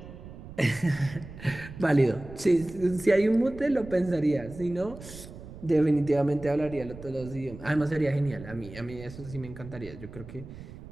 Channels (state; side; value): noise; right; rumble, 15 dB below the sound